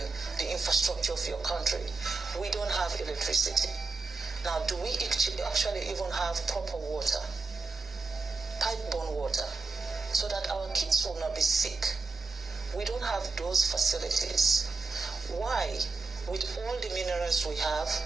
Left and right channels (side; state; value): left; quieter; 3.9 dB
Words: the infrastructure of your country? We don't have electricity. Now, do we actually even have proper water, pipe-borne water, so that our kids will not be sick? We don't have those facilities. Why? With all the minerals we have,